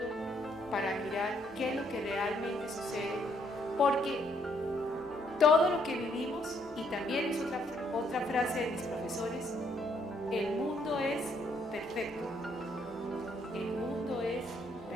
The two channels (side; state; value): both; normal; correlation 0.70